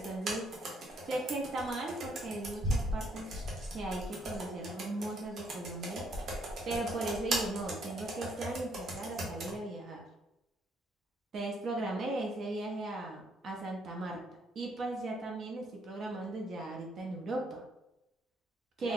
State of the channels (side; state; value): both; normal; correlation 0.70